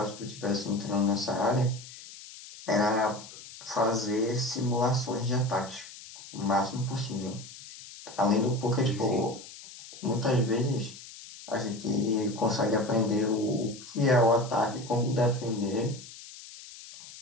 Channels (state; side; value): noise; left; hiss, 16 dB below the sound